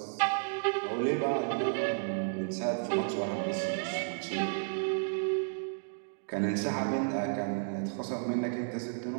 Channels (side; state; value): left; silent; digital silence